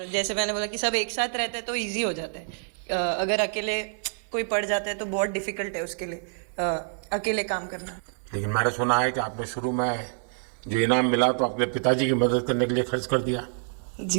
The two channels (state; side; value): silent; left; digital silence